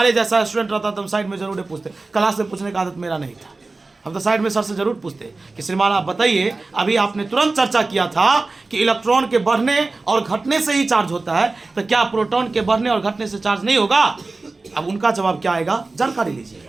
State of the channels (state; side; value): quieter; left; 3.5 dB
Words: जैसा स्टूडेंट रहता तो हम साइड में जरूर पूछते, क्लास में पूछने का आदत मेरा नहीं था, हम तो साइड में सर से जरूर पूछते कि श्रीमान आप बताइए, अभी आपने तुरंत चर्चा किया था कि इलेक्ट्रॉन के बढ़ने और घटने से ही चार्ज होता है, तो क्या प्रोटॉन के बढ़ने और घटने से चार्ज नहीं होगा? अब उनका जवाब क्या आएगा, जानकारी